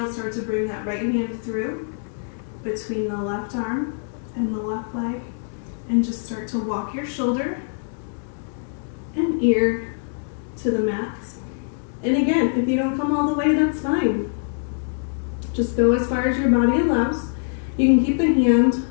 start to bring that right hand through between the left arm and the left leg, and just start to walk your shoulder and ear to the mat. And again, if you don't come all the way, that's fine. Just go as far as your body allows. You can keep the hand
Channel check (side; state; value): right; silent; digital silence